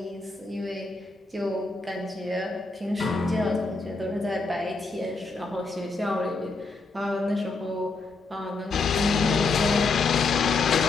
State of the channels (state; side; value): quieter; right; 3.9 dB